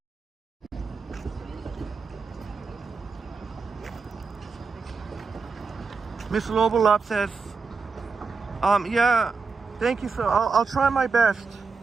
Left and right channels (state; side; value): quieter; left; 4.7 dB